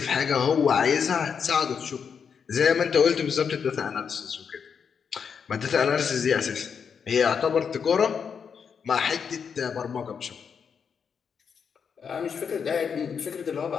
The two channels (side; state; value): right; quieter; 6.7 dB